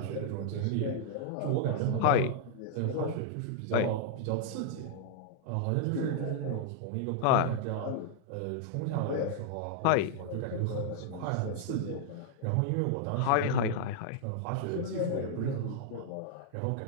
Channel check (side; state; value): both; different; correlation -0.01